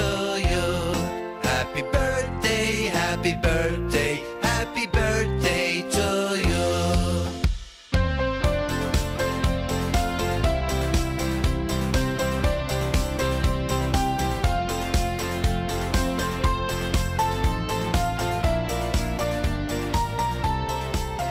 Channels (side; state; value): both; identical; correlation 1.00